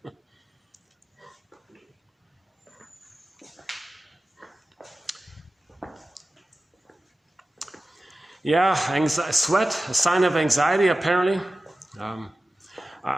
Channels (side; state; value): both; normal; correlation 0.95